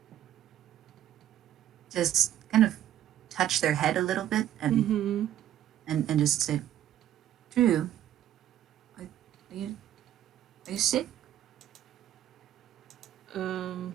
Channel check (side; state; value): left; quieter; 11.7 dB